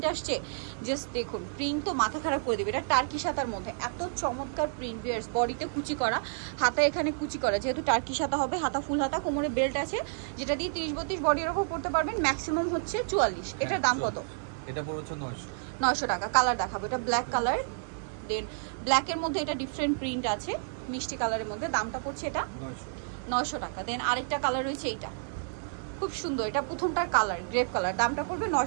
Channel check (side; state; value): left; silent; 58 dB below the other